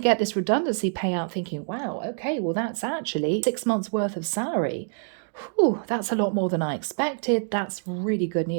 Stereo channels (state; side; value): silent; left; digital silence